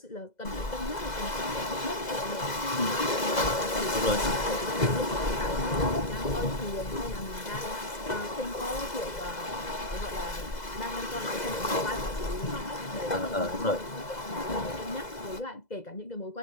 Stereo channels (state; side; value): late; right; 2.0 ms